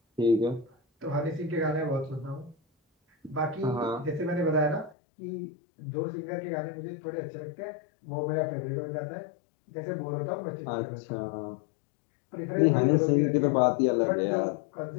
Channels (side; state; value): right; drops out; at 5.0 s